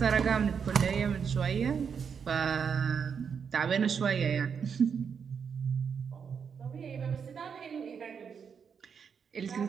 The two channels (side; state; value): left; quieter; 6.7 dB